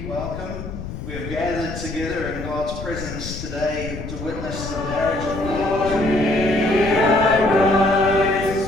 welcome. We have gathered together in God's presence today to witness the marriage of God.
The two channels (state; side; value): noise; left; rumble, 8 dB below the sound